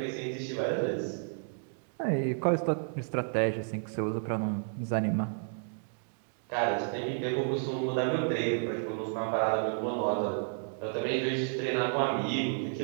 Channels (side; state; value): left; silent; 57 dB below the other